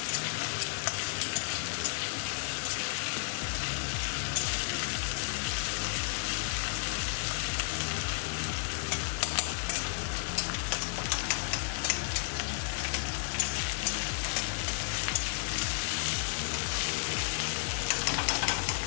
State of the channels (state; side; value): silent; right; 56 dB below the other